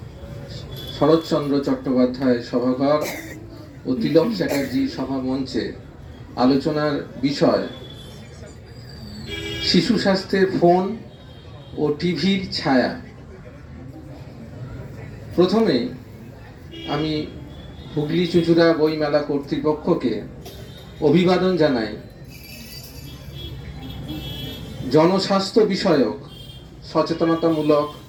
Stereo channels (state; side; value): identical; both; correlation 1.00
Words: শরৎচন্দ্র চট্টোপাধ্যায় সভাঘর ও তিলক চ্যাটার্জি সভা মঞ্চে আলোচনার বিষয় শিশু স্বাস্থ্যের ফোন ও টিভির ছায়া। প্রথমে আমি হুগলি চুঁচুড়া বইমেলা কর্তৃপক্ষকে অভিবাদন জানাই। জনস্বাস্থ্য বিষয়ক সচেতনতামূলক,